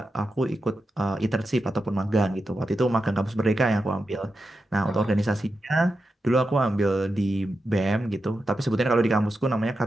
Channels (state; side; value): normal; both; correlation 0.89